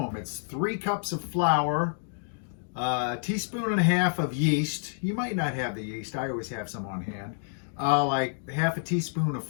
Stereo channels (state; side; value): silent; right; digital silence